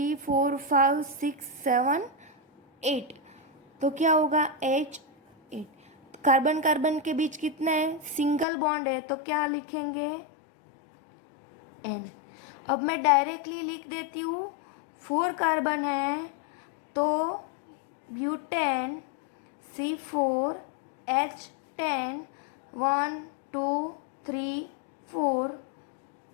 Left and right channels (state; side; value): drops out; right; at 8.5 s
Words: 4 5 6 7 8, तो क्या होगा H8। कार्बन कार्बन के बीच कितना है सिंगल बॉन्ड है, तो क्या लिखेंगे N। अब मैं डायरेक्टली लिख देती हूँ, 4 कार्बन है तो ब्यूटेन C4H10 1 2 3 4